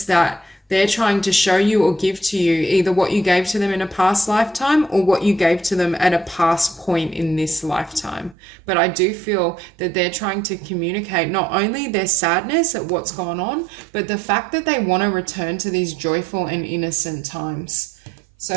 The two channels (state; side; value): drops out; left; at 8.3 s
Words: that they're trying to show you or give to you either what you gave to them in a past lifetime or what you gave to them at a past point in this lifetime. But I do feel that they're trying to communicate not only their sadness at what's gone on, but the fact that they want to return to these joyful and innocent times. So